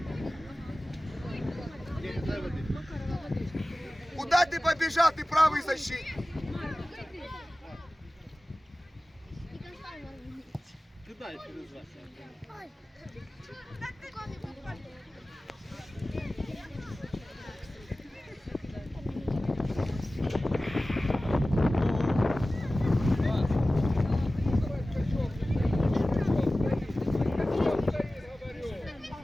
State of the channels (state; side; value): normal; both; correlation 0.97